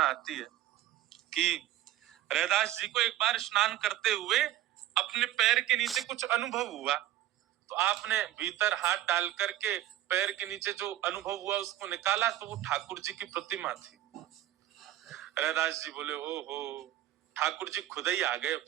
आती है कि रैदास जी को एक बार स्नान करते हुए अपने पैर के नीचे कुछ अनुभव हुआ। तो आपने भीतर हाथ डाल करके पैर के नीचे जो अनुभव हुआ उसको निकाला तो वो ठाकुर जी की प्रतिमा थी। रैदास जी बोले, ओहो, ठाकुर जी खुद ही आ गए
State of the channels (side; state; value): left; quieter; 13.7 dB